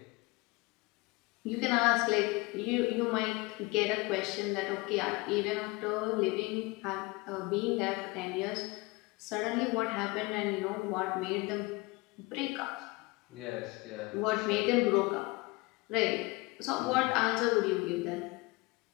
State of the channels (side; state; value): right; quieter; 24.6 dB